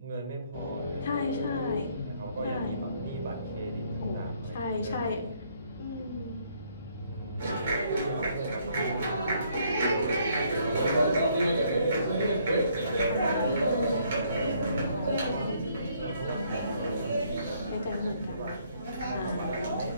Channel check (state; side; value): inverted; both; correlation -0.67